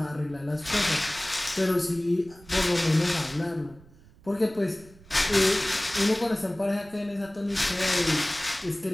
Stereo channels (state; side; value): noise; right; rumble, 24 dB below the sound